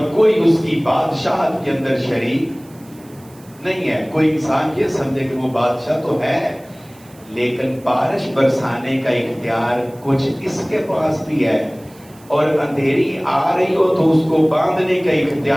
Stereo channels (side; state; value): right; noise; hiss, 27 dB below the sound